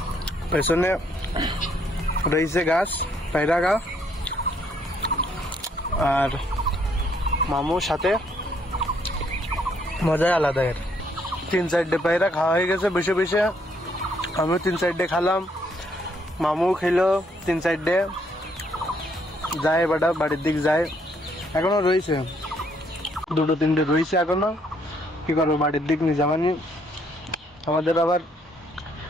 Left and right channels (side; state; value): both; normal; correlation 0.69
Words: পেছনে রয়েছে গাছ। পায়রা খা আর মামুর সাথে মজাই আলাদা। এর 3-4টে পায়রা খাওয়া হয়ে গেছে বসে বসে, আমিও 3-4টে খালাম, মামু খেলো 3-4টে, যায় বাড়া বাড়ির দিক যায়। এখনো রয়েছে 2-3টে রয়েছে এখনো, কি করবো বাড়ির দিক নিয়ে যাবানি। আমাদের আবার